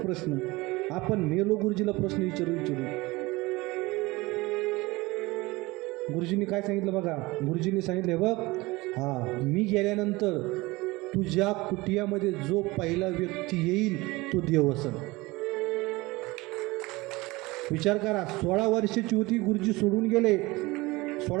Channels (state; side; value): quieter; left; 21.9 dB